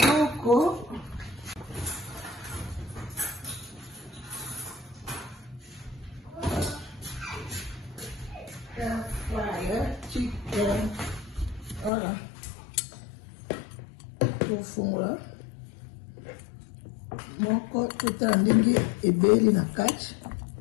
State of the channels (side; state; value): right; drops out; at 11.9 s